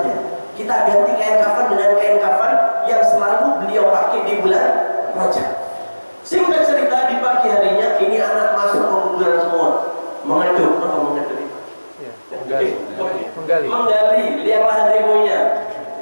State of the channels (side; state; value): both; inverted; correlation -1.00